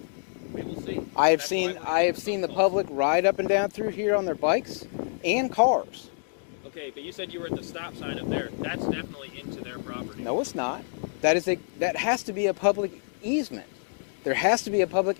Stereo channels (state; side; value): silent; right; digital silence